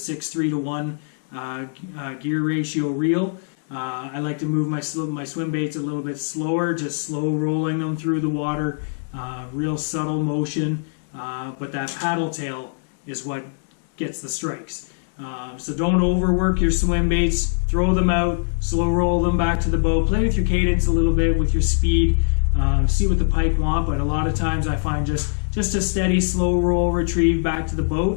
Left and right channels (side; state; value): right; silent; digital silence